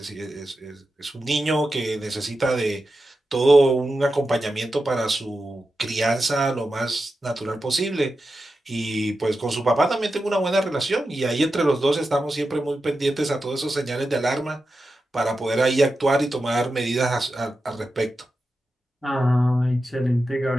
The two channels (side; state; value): both; normal; correlation 0.91